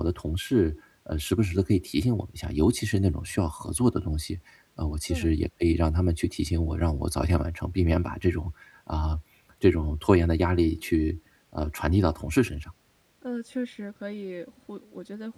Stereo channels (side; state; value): both; identical; correlation 1.00